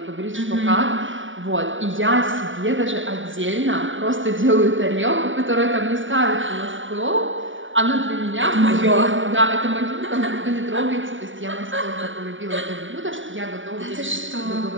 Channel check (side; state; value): left; late; 0.56 ms